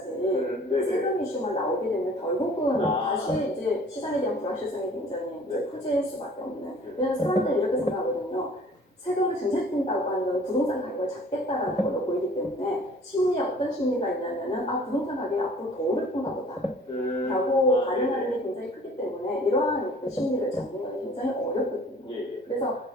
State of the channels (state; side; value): normal; both; correlation 0.51